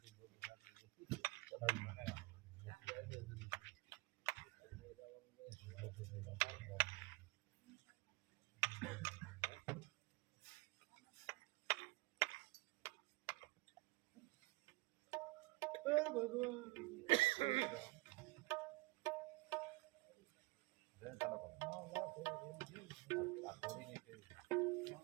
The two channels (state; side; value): quieter; left; 23.9 dB